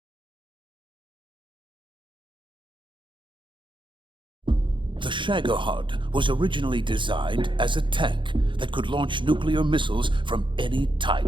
The 𝐟𝐸𝐵𝐻𝑡 was originally designed as a tank that could launch nuclear missiles from any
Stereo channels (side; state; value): left; late; 0.23 ms